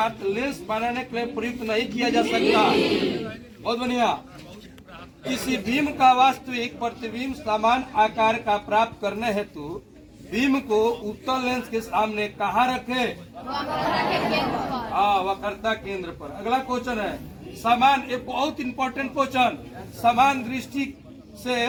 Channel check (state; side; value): identical; both; correlation 1.00